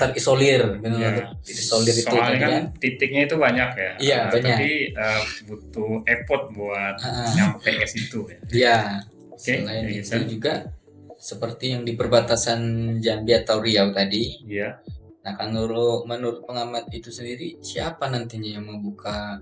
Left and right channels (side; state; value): both; identical; correlation 1.00